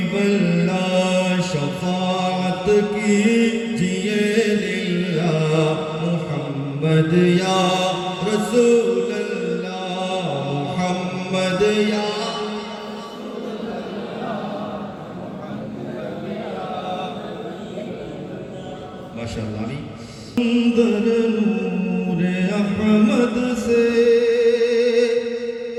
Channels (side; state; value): both; identical; correlation 1.00